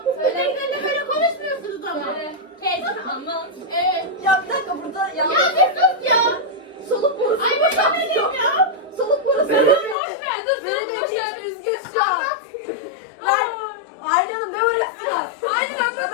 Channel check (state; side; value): drops out; right; at 10.0 s